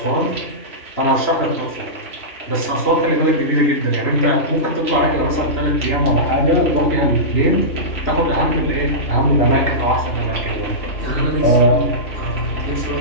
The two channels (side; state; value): right; late; 3.0 ms